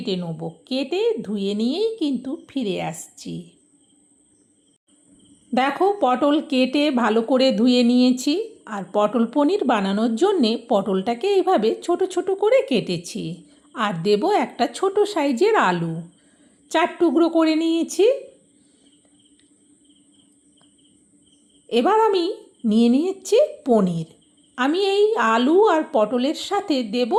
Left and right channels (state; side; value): identical; both; correlation 1.00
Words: নেব। কেটে ধুয়ে নিয়েই কিন্তু ফিরে আসছি। দেখো, পটল কেটে ভালো করে ধুয়ে নিয়েছি। আর পটল পনির বানানোর জন্যে পটলটাকে এইভাবে ছোট ছোট করে কেটেছি। আর দেব একটা ছোট সাইজের আলু, 4 টুকরো করে নিয়েছি। এবার আমি নিয়ে নিয়েছি পনির। আমি এই আলু আর পটলের সাথে দেব